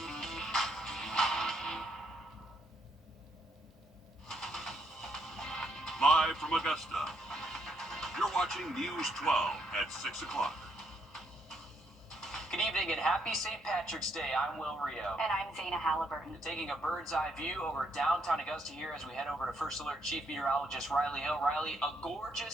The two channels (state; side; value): normal; both; correlation 0.73